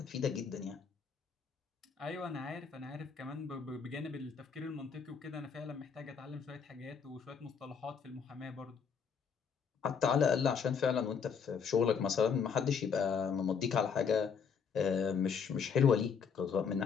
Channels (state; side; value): quieter; right; 6.4 dB